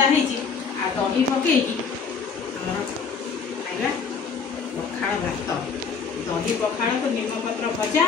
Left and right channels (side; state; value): right; quieter; 5.7 dB